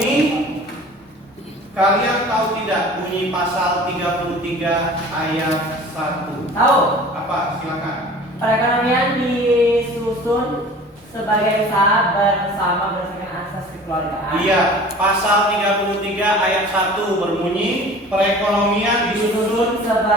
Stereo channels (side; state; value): both; normal; correlation 0.43